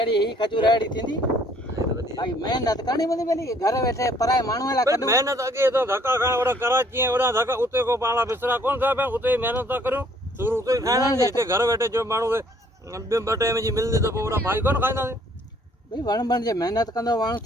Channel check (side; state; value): both; normal; correlation 0.62